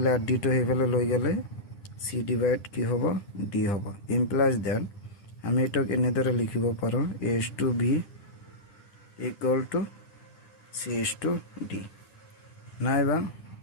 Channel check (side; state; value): right; late; 10 ms